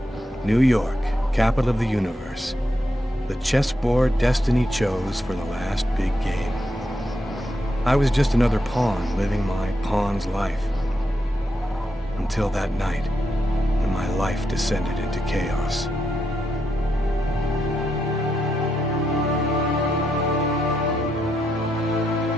New York, capital of the universe. The chessboard destiny chose for the last big game. I was just another pawn living my pawn's life. Until that night, when my life descended into chaos.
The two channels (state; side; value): normal; both; correlation 0.82